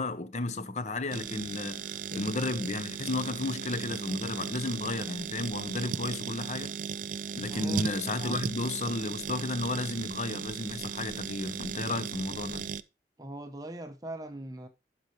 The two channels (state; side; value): normal; both; correlation 0.41